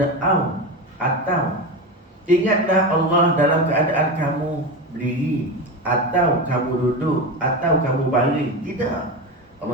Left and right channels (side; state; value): both; normal; correlation 0.21